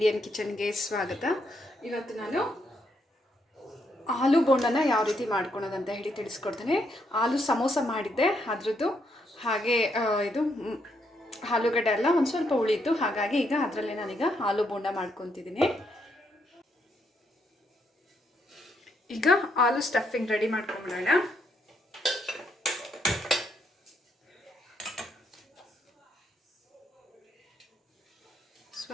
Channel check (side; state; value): both; normal; correlation 0.76